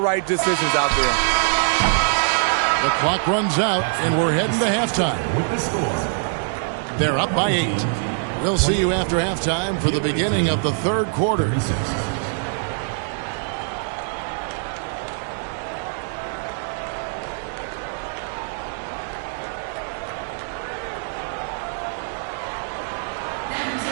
decisions out there. The clock runs out, and we're heading to halftime. They're up by 8. We'll see you after halftime for the beginning of the 3rd quarter.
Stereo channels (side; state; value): left; silent; 63 dB below the other